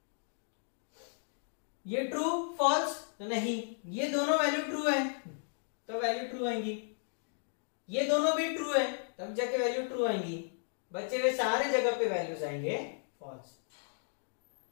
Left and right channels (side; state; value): right; silent; digital silence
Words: ये ट्रू फॉल्स तो नहीं, ये दोनों वैल्यू ट्रू है तो वैल्यू ट्रू आएंगी, ये दोनों भी ट्रू है तब जाके वैल्यू ट्रू आएंगी। बचे हुए सारे जगह पे वैल्यूज आएंगे फॉल्स।